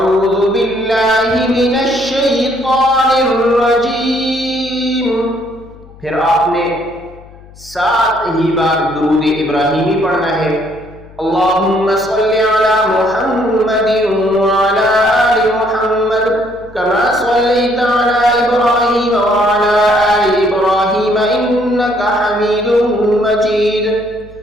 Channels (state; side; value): noise; left; hum, 22 dB below the sound